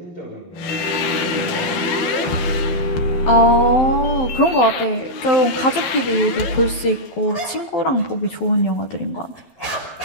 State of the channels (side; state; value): right; late; 12 ms